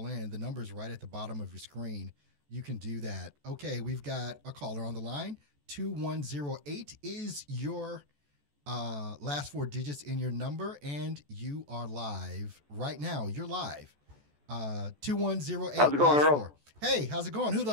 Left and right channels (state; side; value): late; left; 14 ms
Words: in, the number's right at the bottom of your screen. You can do that. Okay, we've got a caller on the line. 2108 is your last 4 digits in your number, and you are live right now. You're live. 2108. How's it going, Earl? 4. Hey, how's it going? Who do